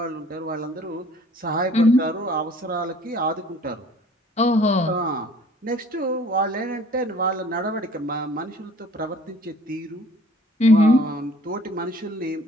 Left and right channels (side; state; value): both; normal; correlation 0.53